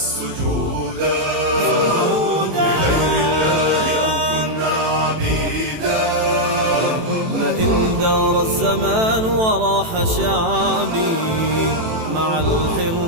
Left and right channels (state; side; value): late; left; 18 ms